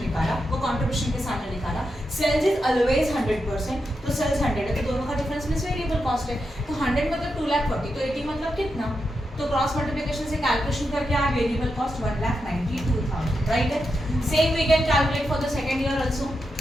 निकाला, वो कंट्रीब्यूशन के सामने निकाला, सेल्स इज ऑलवेज 100%, तो सेल्स 100 है, तो दोनों का डिफरेंस मींस वेरिएबल कॉस्ट है, तो 100 मतलब 2,40,000, तो 80 मतलब कितना, तो क्रॉस मल्टीप्लिकेशन से कैलकुलेशन करके आया वेरिएबल कॉस्ट 1,92,000, राइट है। Same we can calculate for the second year also,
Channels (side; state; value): both; normal; correlation 0.86